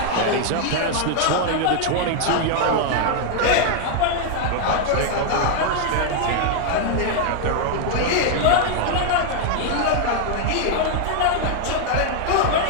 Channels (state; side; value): different; both; correlation 0.00